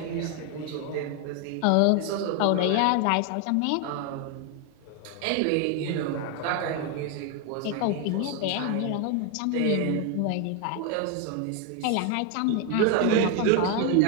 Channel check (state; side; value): different; both; correlation 0.01